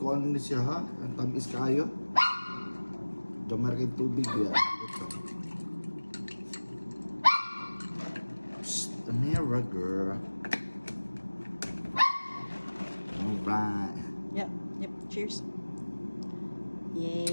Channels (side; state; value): both; inverted; correlation -1.00